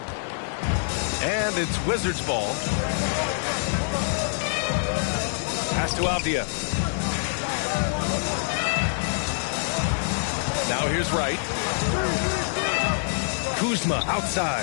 And it's Wizards ball. Pass to Avdia. Now here's Wright. Kuzma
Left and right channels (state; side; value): silent; right; digital silence